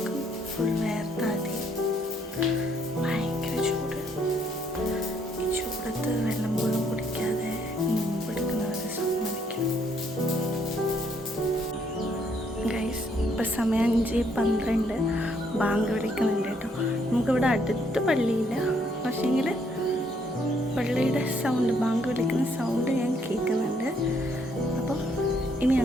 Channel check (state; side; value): normal; both; correlation 0.70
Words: ഇപ്പം സമയം 5:12 ബാങ്ക് വിളിക്കുന്നുണ്ട് കേട്ടോ. നമുക്കിവിടെ അടുത്ത് പള്ളിയില്ല, പക്ഷേങ്കിൽ പള്ളിയുടെ സൗണ്ട്, ബാങ്ക് വിളിക്കുന്ന സൗണ്ട് ഞാൻ കേൾക്കുന്നുണ്ട്. അപ്പം ഇനി